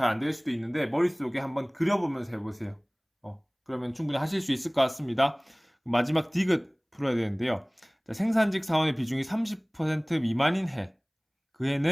안 될 수도 있는데 머릿속에 한번 그려보면서 해보세요. 그러면 충분히 하실 수 있을 것 같습니다. 마지막 디귿 풀어야 되는데요. 자, 생산직 사원의 비중이 30% 미만인 해. 그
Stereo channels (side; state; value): both; identical; correlation 1.00